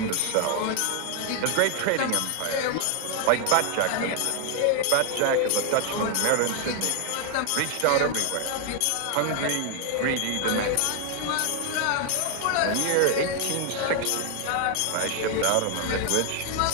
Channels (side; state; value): both; different; correlation 0.00